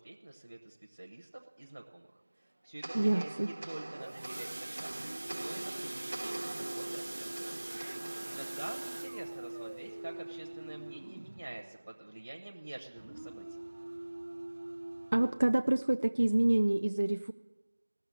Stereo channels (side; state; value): both; inverted; correlation -1.00